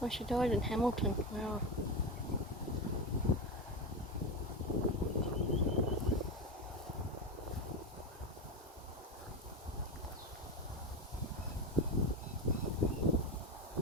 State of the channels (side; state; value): both; normal; correlation 0.17